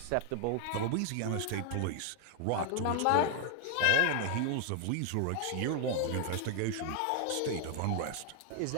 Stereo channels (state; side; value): different; both; correlation 0.00